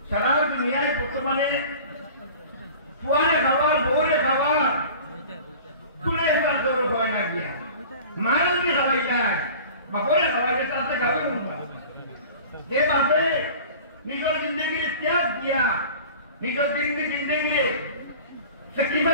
সারা দুনিয়ায় বর্তমানে ফুয়ারে খাবার বউরে খাবার তুলে এবার গৌরব হয় না গিয়া মারে যদি খাওয়াই যায় বাপরে খাওয়াই যায় তাতে গাবে উঠবা যে বাপে নিজের জিন্দগিরে ত্যাগ দিয়া নিজের জিন্দগিরে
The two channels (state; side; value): inverted; both; correlation -0.41